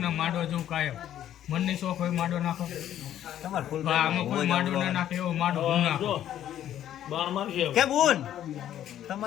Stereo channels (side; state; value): right; quieter; 11.4 dB